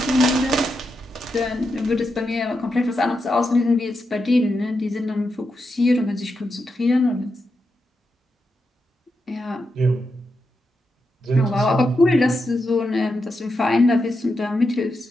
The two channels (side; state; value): both; normal; correlation 0.86